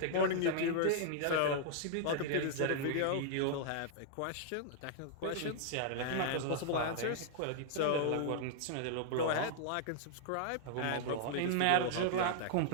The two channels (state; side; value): different; both; correlation -0.01